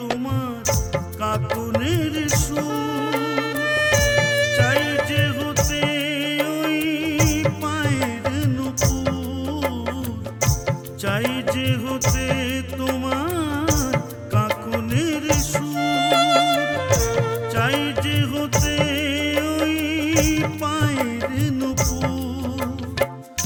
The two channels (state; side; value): identical; both; correlation 1.00